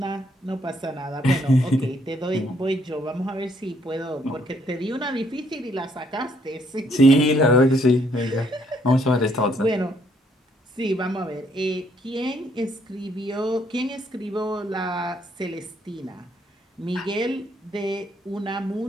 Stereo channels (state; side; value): normal; both; correlation 0.69